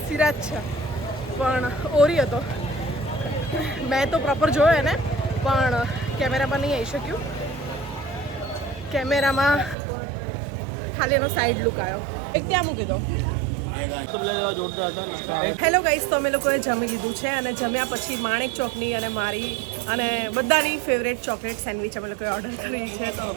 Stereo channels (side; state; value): left; drops out; at 9.8 s